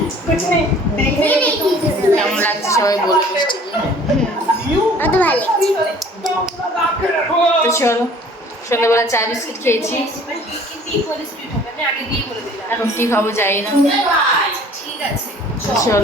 কেমন লাগছে সবাই বলবে মিষ্টি। তো চলো, সন্ধ্যাবেলা চা বিস্কিট খেয়েছি, এখন কি খাবো যাই না।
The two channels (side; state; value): both; normal; correlation 0.51